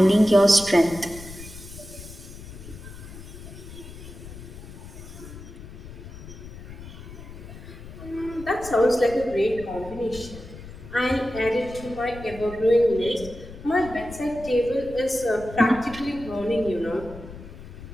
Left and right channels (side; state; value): left; noise; rumble, 14 dB below the sound